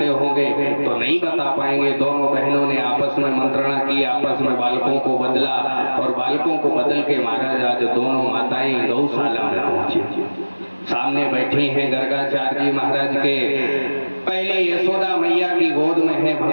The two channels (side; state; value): both; inverted; correlation -1.00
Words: होंगे तो नहीं बता पाएंगे। दोनों बहनों ने आपस में मंत्रणा की, आपस में बालकों को बदला और बालकों को बदल के महाराज आज दोनों माताएं गौशाला में पहुंची। सामने बैठी हैं गर्गाचार्य जी महाराज के। पहले यशोदा मैया की गोद में है